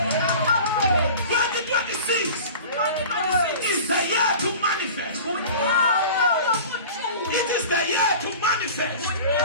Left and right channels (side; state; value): both; inverted; correlation -0.39